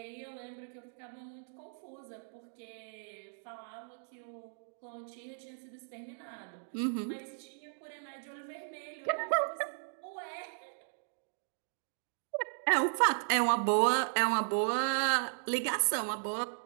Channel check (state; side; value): silent; left; digital silence